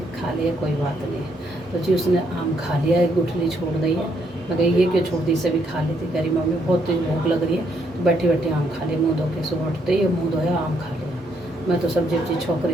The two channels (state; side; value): normal; both; correlation 0.73